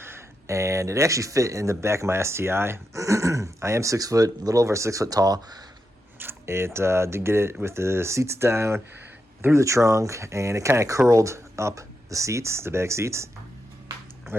And it actually fit in the back of my STi. I am 6 foot, a little over 6 foot tall. It did get it with the seats down through the trunk, and it kind of curled up the seats, the back seats,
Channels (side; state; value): both; normal; correlation 0.86